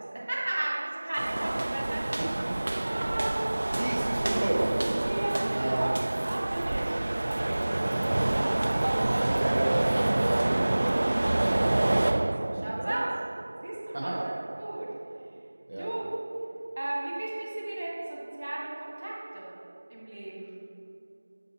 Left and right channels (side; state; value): both; inverted; correlation -1.00